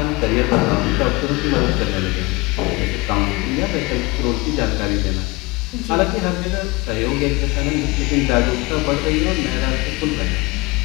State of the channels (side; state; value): right; quieter; 23.9 dB